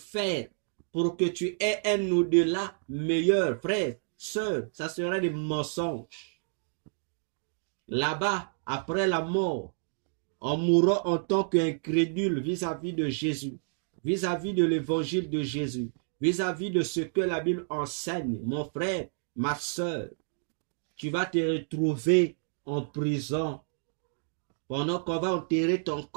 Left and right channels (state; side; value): silent; left; digital silence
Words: pour que tu aies un au-delà meilleur, frère, sœur, ça serait des mensonges. Là-bas, après la mort, on mourra en tant qu'incrédule vis-à-vis de Jésus, vis-à-vis de l'évangile de Jésus, vis-à-vis de ce que la Bible enseigne. Mon frère, ma sœur, tu vas te retrouver en prison pendant qu'on va enterrer ton